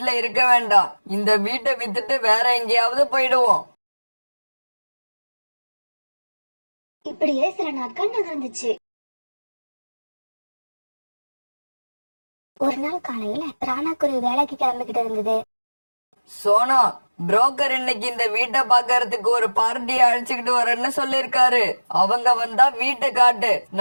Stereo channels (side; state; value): both; inverted; correlation -1.00